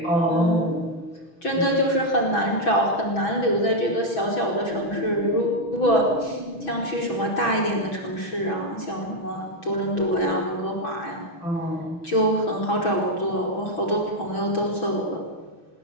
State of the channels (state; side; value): late; right; 6.1 ms